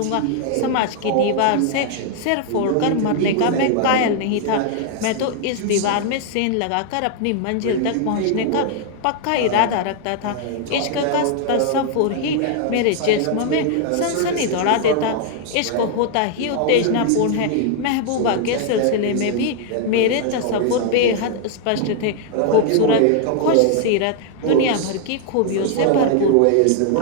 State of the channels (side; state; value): both; different; correlation 0.00